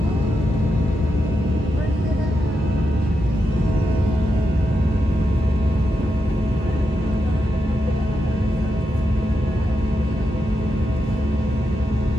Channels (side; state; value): both; normal; correlation 0.86